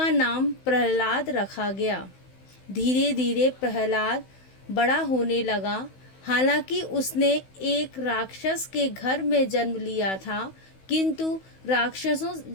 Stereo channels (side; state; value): right; late; 16 ms